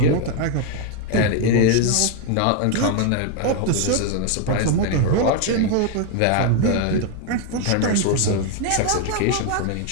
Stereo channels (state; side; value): different; both; correlation 0.01